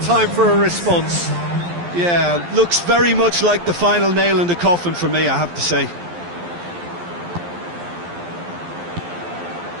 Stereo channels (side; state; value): left; late; 12 ms